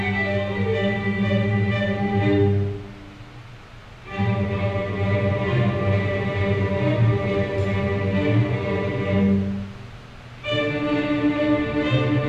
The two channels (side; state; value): both; identical; correlation 1.00